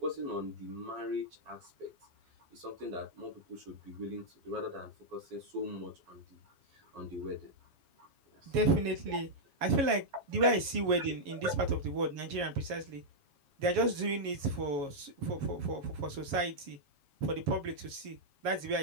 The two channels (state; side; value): late; left; 7.2 ms